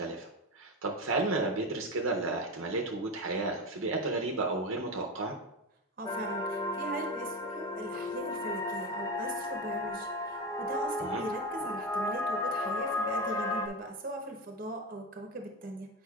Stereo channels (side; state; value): both; normal; correlation 0.18